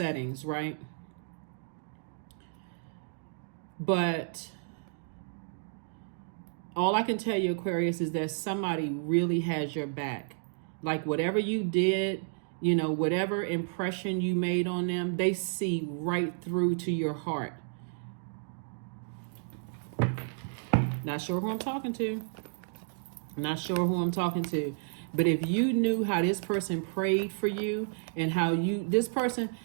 right? But all I can tell you, Aquarius, is that somebody really has your back. Like, whatever you did, whatever impression you made on them, they see right through to your heart. Not sure who I'm talking to. But if you knew how this person prayed for you, and how this person,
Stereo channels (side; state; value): left; silent; digital silence